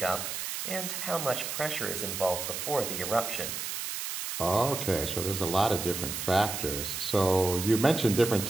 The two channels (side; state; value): right; noise; hiss, 4 dB below the sound